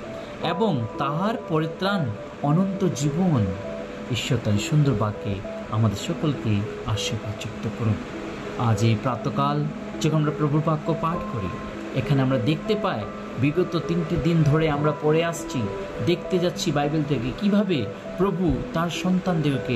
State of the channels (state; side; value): identical; both; correlation 1.00